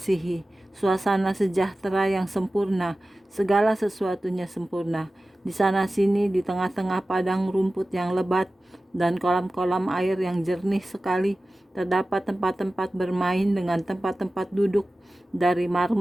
suasana sejahtera yang sempurna, segala sesuatunya sempurna. Di sana-sini, di tengah-tengah padang rumput yang lebat dan kolam-kolam air yang jernih sekali, terdapat tempat-tempat bermain dengan tempat-tempat duduk dari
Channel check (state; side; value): normal; both; correlation 0.96